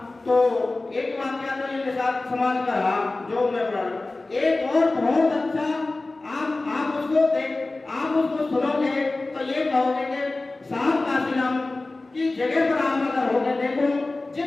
तो एक वाक्य तो ये साथ समाज का रहा जो मैं पढ़ा। एक और बहुत अच्छा, आप उसको सुनोगे तो ये कहोगे कि साहब काशीराम की जगह पर आप अगर होगे, देखो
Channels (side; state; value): right; quieter; 3.1 dB